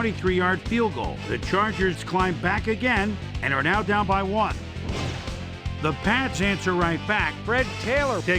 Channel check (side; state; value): both; identical; correlation 1.00